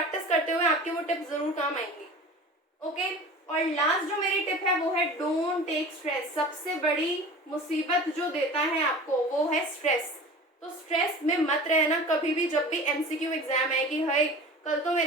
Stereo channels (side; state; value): both; normal; correlation 0.38